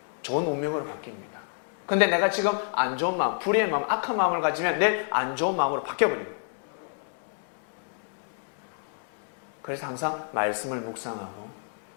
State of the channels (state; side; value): silent; right; digital silence